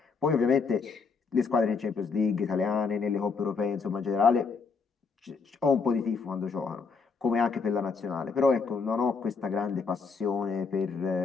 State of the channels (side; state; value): right; quieter; 5.0 dB